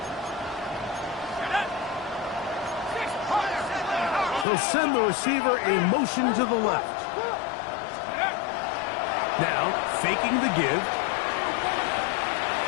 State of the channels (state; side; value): drops out; right; at 4.5 s